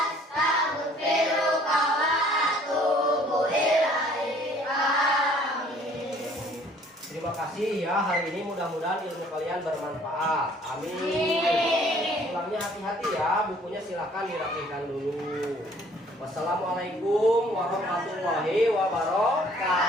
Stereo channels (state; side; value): normal; both; correlation 0.57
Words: wa atubu ilaik. Amin. Terima kasih ya, hari ini mudah-mudahan ilmu kalian bermanfaat. Amin. Pulangnya hati-hati ya, bukunya silakan dirapikan dulu. Wassalamualaikum warahmatullahi